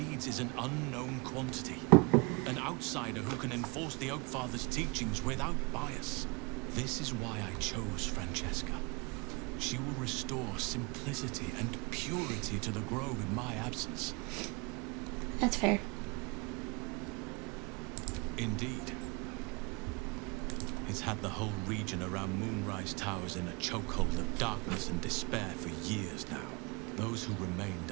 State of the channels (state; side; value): quieter; left; 28.8 dB